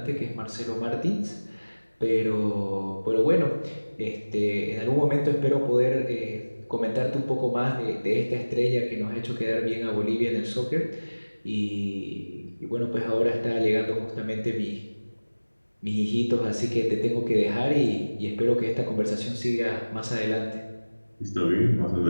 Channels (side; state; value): both; inverted; correlation -1.00